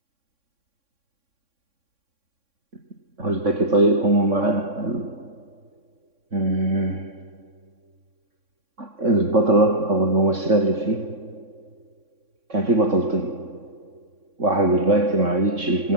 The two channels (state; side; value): late; left; 3.6 ms